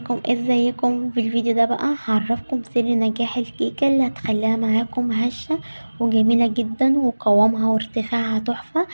ازيكم؟ في الفيديو ده بقى هعرفكم سر نجاح الكيكة اللي هتخليها معاكم هشة وجميلة جدا وقوامها وارتفاعها تحفة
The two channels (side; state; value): both; inverted; correlation -1.00